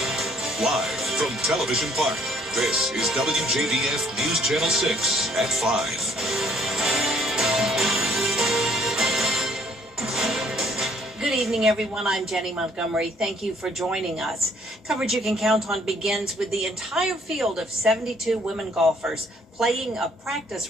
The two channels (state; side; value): normal; both; correlation 0.62